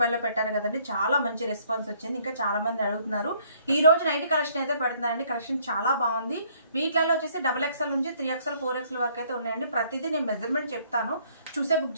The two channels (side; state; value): both; inverted; correlation -0.64